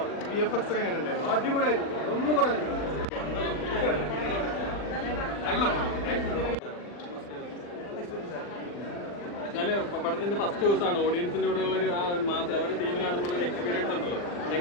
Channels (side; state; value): right; late; 40 ms